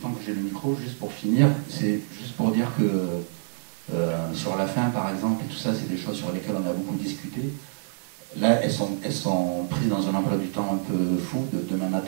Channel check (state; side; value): silent; left; digital silence